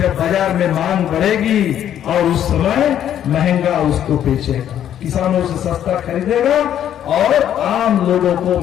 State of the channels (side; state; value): right; quieter; 10.4 dB